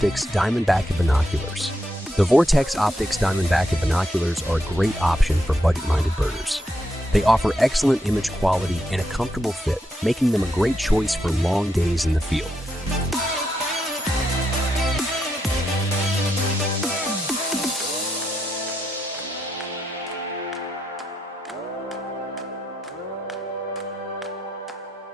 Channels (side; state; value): both; normal; correlation 0.81